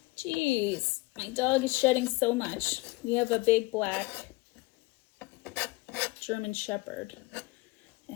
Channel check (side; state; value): right; quieter; 23.0 dB